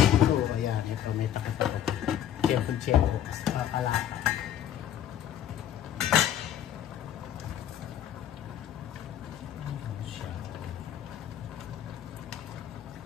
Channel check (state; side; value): quieter; right; 10.6 dB